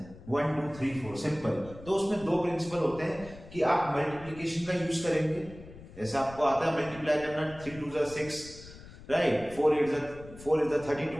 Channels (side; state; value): left; noise; rumble, 17 dB below the sound